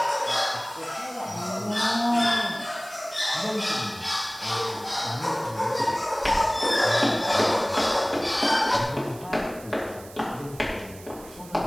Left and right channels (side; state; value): right; noise; hiss, 19 dB below the sound